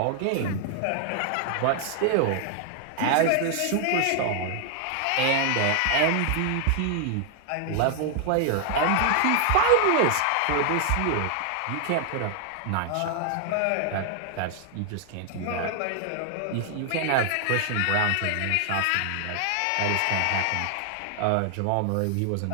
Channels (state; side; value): different; both; correlation 0.00